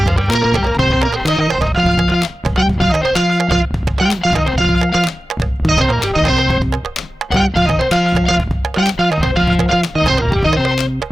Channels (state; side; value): normal; both; correlation 0.95